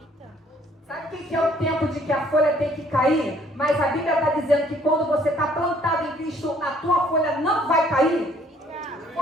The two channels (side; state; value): both; normal; correlation 0.61